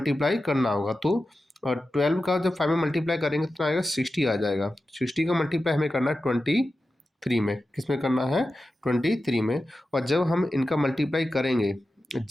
करना होगा। तो 12 का जब 5 में मल्टीप्लाई करेंगे तो आएगा 60 आ जाएगा। 60 का मल्टीप्लाई हमें करना है 23 में। किस में करना है? 23 में। और जब हम इनका मल्टीप्लाई करेंगे,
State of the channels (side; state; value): both; normal; correlation 0.93